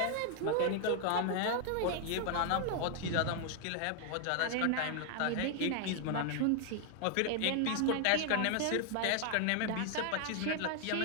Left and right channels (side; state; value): both; different; correlation 0.00